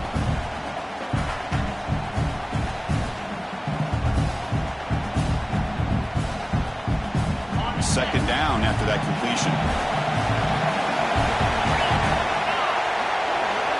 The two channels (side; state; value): both; identical; correlation 1.00